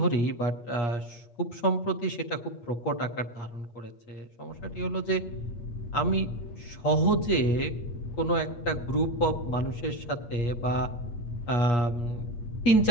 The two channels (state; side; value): late; right; 8.4 ms